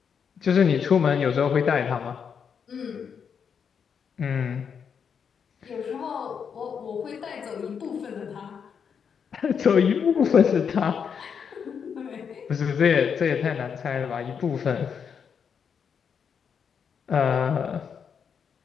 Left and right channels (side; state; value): right; quieter; 6.9 dB